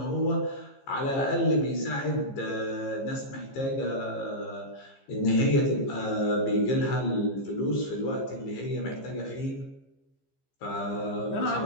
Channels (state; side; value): late; right; 15 ms